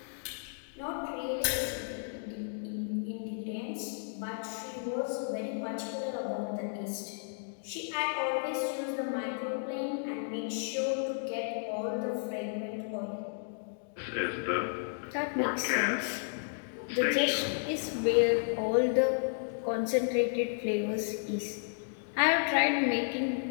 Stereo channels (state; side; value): silent; right; digital silence